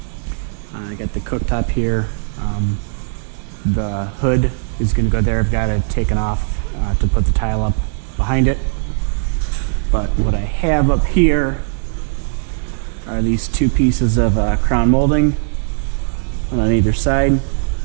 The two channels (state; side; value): silent; left; 67 dB below the other